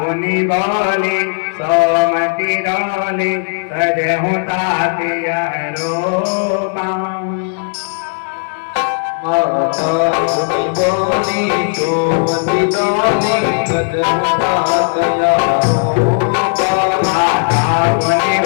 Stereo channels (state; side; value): silent; right; 67 dB below the other